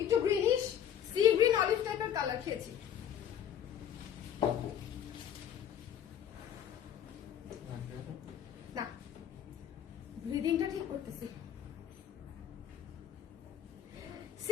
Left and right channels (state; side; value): quieter; right; 9.8 dB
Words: একটু গ্রিনিশ সি গ্রিন অলিভ টাইপের কালার খেয়েছি। না, ব্রিদিংটা ঠিক করতেছি।